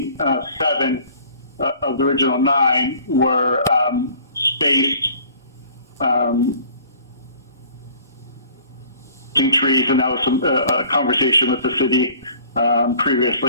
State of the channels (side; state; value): both; inverted; correlation -0.52